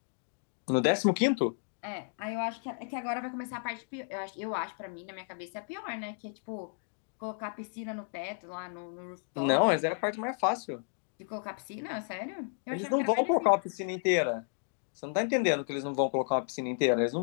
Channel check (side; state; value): right; silent; 56 dB below the other